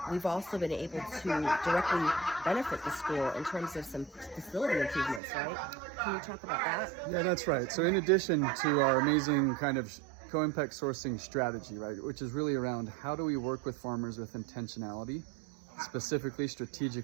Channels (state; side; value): drops out; left; at 5.2 s